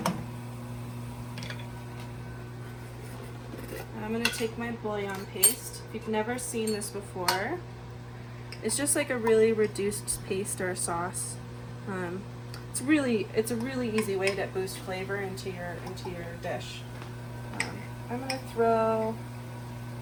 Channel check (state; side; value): identical; both; correlation 1.00